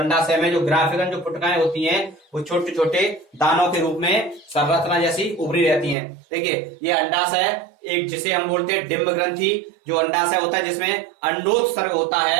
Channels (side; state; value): left; drops out; at 6.0 s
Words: में जो ग्राफिकन जो पुटकाएं होती हैं वो छोटे छोटे दानों के रूप में संरचना जैसी उभरी रहती हैं। देखिए, ये अंडाशय एक जिसे हम बोलते हैं डिंब ग्रंथि, जो अंडाशय होता है जिसमें अंडोत्सर्ग होता